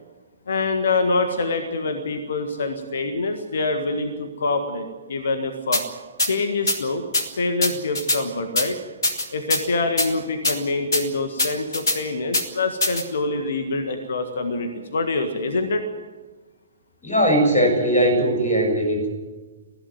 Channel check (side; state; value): both; inverted; correlation -0.53